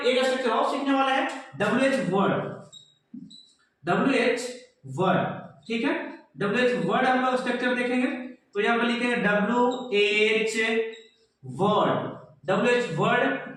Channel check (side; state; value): both; identical; correlation 1.00